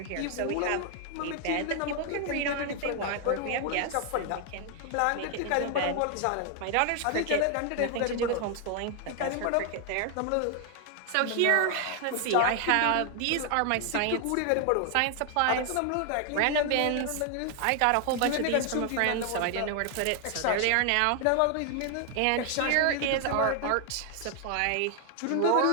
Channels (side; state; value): both; different; correlation 0.00